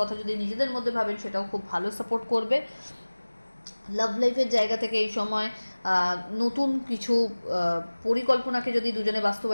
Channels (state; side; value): inverted; both; correlation -1.00